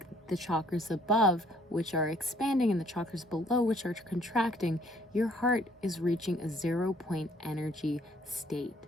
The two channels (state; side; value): normal; both; correlation 0.62